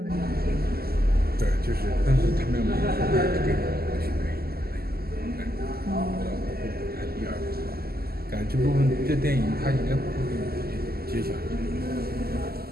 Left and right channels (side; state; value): left; late; 0.45 ms